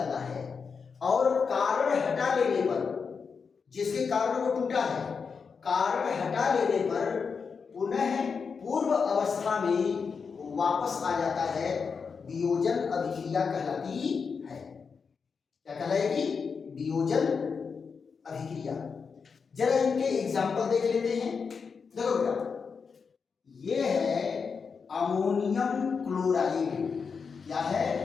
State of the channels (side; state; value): right; quieter; 5.6 dB